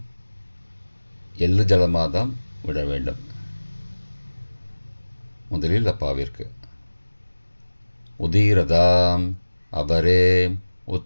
எள்ளு ஜலமாக தான் விட வேண்டும். முதலில் அப்பாவிற்கு. உதீரதாம் அபரே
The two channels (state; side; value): inverted; both; correlation -1.00